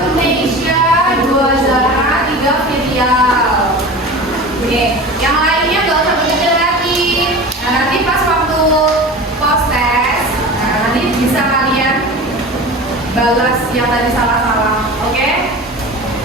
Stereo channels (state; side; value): normal; both; correlation 0.34